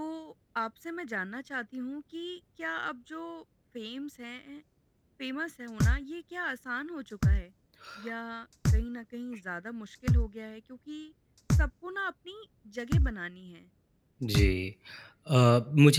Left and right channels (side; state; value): both; identical; correlation 1.00